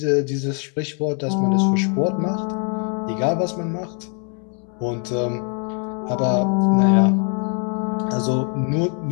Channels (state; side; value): quieter; right; 39.4 dB